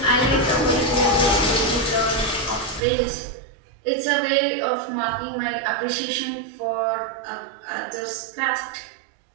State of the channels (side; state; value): left; drops out; at 2.8 s